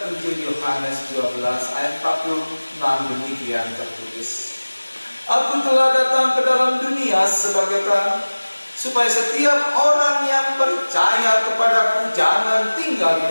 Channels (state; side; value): inverted; both; correlation -1.00